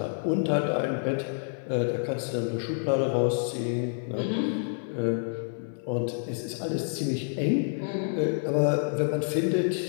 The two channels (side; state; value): right; silent; 59 dB below the other